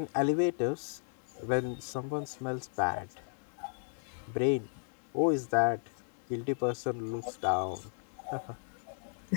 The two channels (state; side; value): silent; right; digital silence